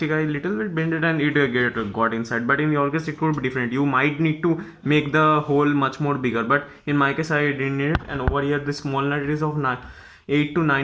I little bit bended and it got inside. But in your case it could be different. You might need to make the hole much more bigger, but in my case I didn't need it. And over here this small nut is of 8 to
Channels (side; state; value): both; identical; correlation 1.00